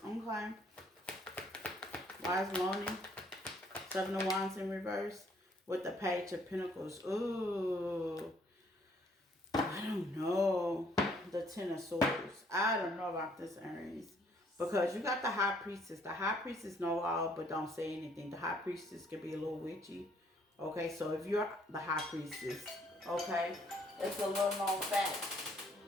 Okay. Wise lonely. 7 of Wands in reverse. With the Page of Pentacles. Ooh. I don't know. The 10 of Swords. I don't know about this, Aries. Because you got the High Priestess. The High Priestess know all but don't say anything. The High Priestess can be a little witchy. Okay, so if you're the High Priestess, okay, it's a little known fact.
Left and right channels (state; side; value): normal; both; correlation 0.64